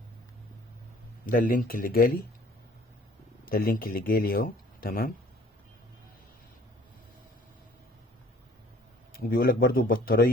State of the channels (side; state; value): both; normal; correlation 0.54